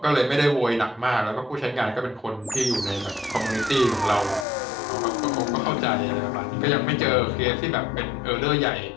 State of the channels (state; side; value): drops out; right; at 4.5 s